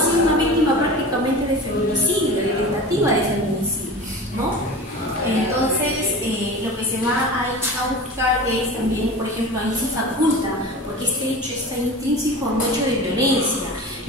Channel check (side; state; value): both; normal; correlation 0.34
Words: una víctima prácticamente de feminicidio, de tentativa de feminicidio, ¿no? Entonces, lo que se va a buscar es también, por ejemplo, ahí se faculta, porque este hecho está intrínseco a un hecho de violencia,